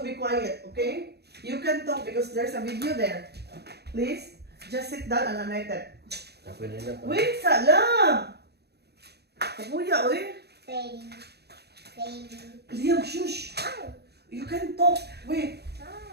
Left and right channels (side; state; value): left; late; 0.48 ms